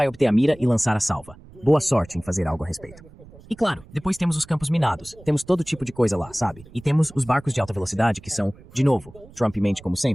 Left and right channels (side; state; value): right; noise; rumble, 22 dB below the sound